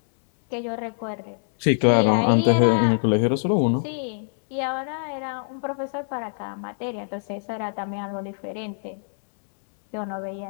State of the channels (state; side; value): silent; right; 62 dB below the other